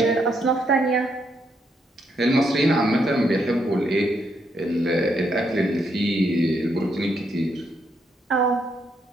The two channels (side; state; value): both; normal; correlation 0.76